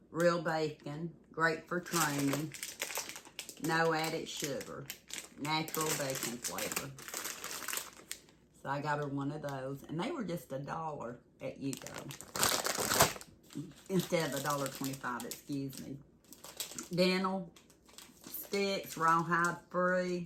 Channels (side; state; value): both; identical; correlation 1.00